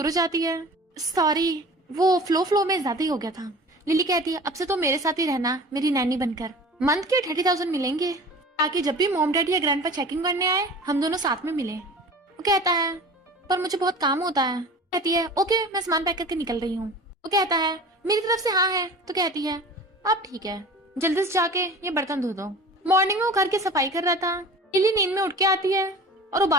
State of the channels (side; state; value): both; normal; correlation 0.39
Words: हो जाती है। सॉरी, वो फ्लो में ज्यादा ही हो गया था। लिली कहती है अब से तो मेरे साथ ही रहना मेरी नैनी बनकर। मंथ के 30,000 मिलेंगे ताकि जब भी मॉम डैडी या ग्रैंडपा चेकिंग करने आए हम दोनों साथ में मिले। वो कहता है पर मुझे बहुत काम होता है। कहती है ओके मैं सामान पैक करके निकल रही हूँ। वो कहता है मेरी तरफ से हाँ है। तो कहती है अब ठीक है, जल्दी से जाके ये बर्तन धो दो। मॉर्निंग में वो घर की सफाई कर रहा था। लिली नींद में उठ के आती है और वो